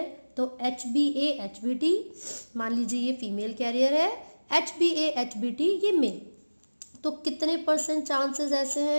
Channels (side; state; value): both; inverted; correlation -1.00